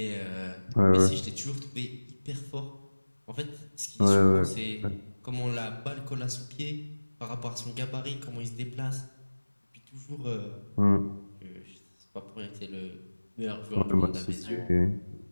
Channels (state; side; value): inverted; both; correlation -1.00